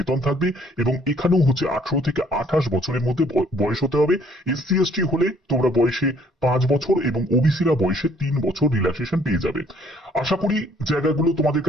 থাকবে। এবং এখানেও হচ্ছে 18 থেকে 28 বছরের মধ্যে বয়স হতে হবে। এসসি এসটি হলে তোমরা বয়সে 5 বছর এবং ওবিসিরা বয়সে 3 বছর রিল্যাক্সেশন পেয়ে যাবে। আশা করি জায়গাগুলো তোমাদের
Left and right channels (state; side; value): normal; both; correlation 0.62